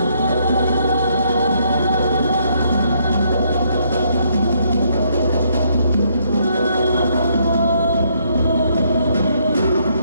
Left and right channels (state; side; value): inverted; both; correlation -0.71